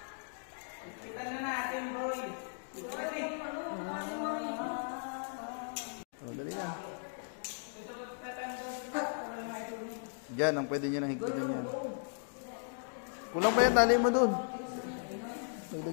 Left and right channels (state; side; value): silent; right; digital silence